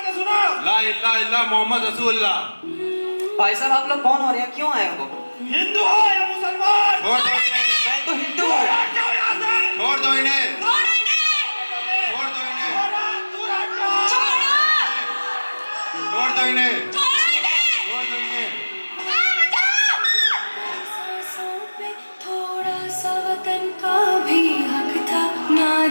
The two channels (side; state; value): both; inverted; correlation -1.00